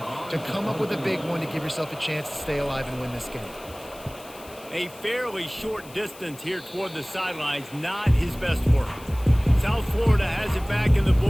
to come up with a big one to give yourself a chance to stay alive and win this game? A fairly short distance here toward the sidelines, not his best work. South Florida has it back, and the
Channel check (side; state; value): left; noise; hiss, 20 dB below the sound